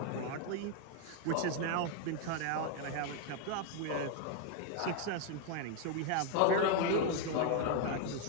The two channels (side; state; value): both; different; correlation 0.01